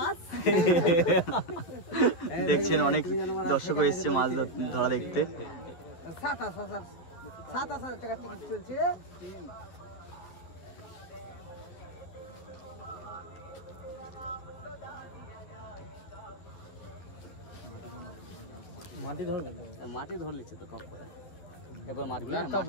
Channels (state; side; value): late; right; 11 ms